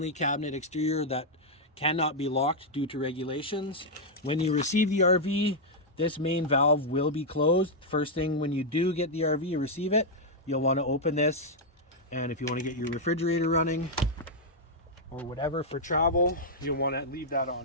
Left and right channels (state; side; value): normal; both; correlation -0.03